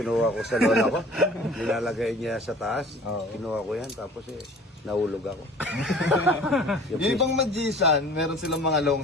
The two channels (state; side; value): normal; both; correlation 0.46